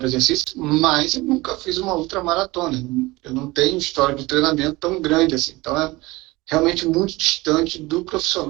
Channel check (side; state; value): left; quieter; 21.3 dB